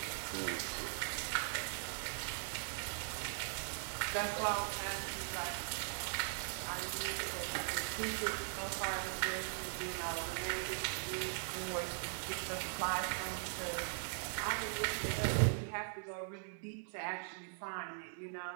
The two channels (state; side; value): silent; left; 51 dB below the other